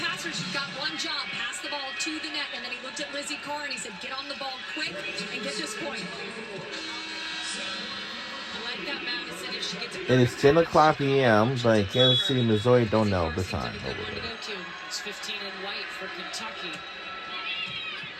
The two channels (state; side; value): identical; both; correlation 1.00